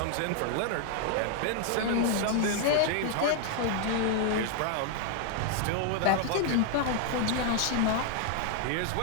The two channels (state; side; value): different; both; correlation 0.00